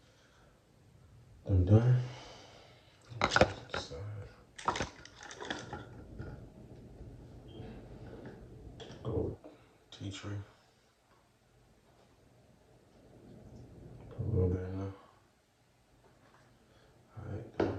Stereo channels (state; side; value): identical; both; correlation 1.00